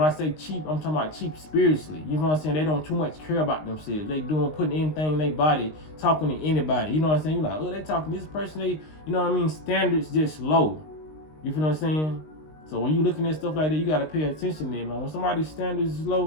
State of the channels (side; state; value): right; late; 19 ms